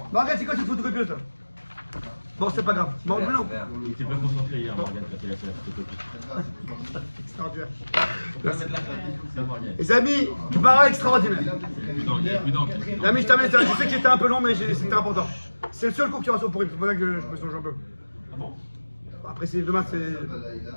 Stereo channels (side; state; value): both; inverted; correlation -1.00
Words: c'est quoi cette photocopieuse là? Bon, c'est pas grave. Bon, non. Il était pas concentré hier, Morgane, quand il a fait la photocopie. Extraordinaire. Les amis, Gemara extraordinaire. Les amis, je termine ça. Je sais qu'il était un peu long, mais c'était important. C'est le seul cours qui aura sur Purim. C'est pour ça que je me songe un peu. Ah bon? Après, c'est demain,